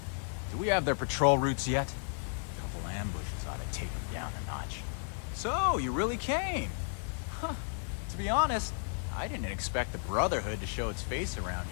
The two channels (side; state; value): right; silent; 55 dB below the other